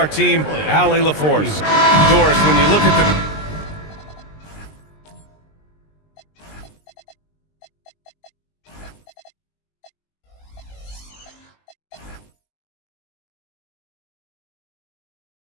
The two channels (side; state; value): right; late; 20 ms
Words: team, Allie LaForce. Doris, when you look at the...